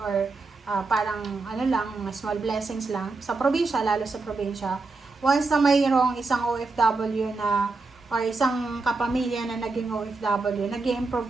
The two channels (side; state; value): left; quieter; 3.8 dB